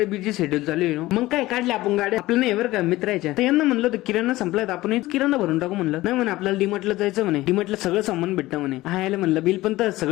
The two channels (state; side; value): quieter; right; 17.8 dB